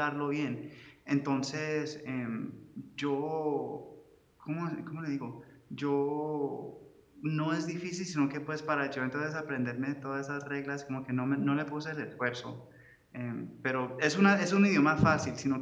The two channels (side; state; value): both; identical; correlation 1.00